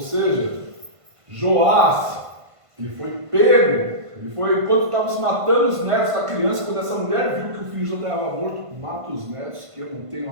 Joás, ele foi pego, enquanto estavam se matando os netos da criança, quando essa mulher viu que o filho já estava morto, mata os netos, que eu não tenho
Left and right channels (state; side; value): late; left; 1.5 ms